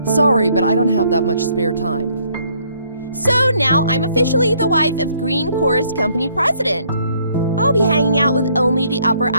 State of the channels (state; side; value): inverted; both; correlation -0.66